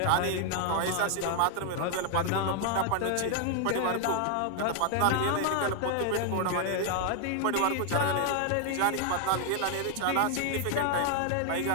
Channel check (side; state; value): both; different; correlation 0.00